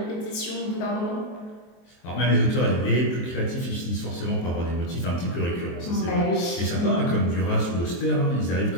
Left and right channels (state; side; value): late; right; 23 ms